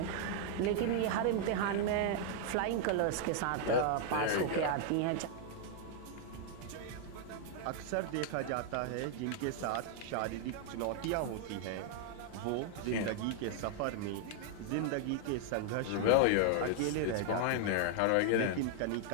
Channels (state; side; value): different; both; correlation 0.00